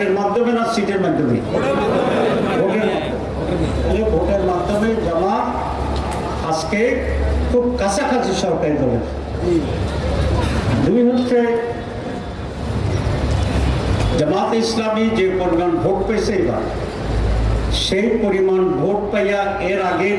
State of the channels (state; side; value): identical; both; correlation 1.00